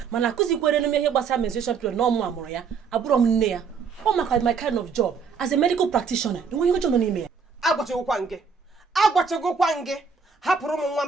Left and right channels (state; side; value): quieter; left; 5.8 dB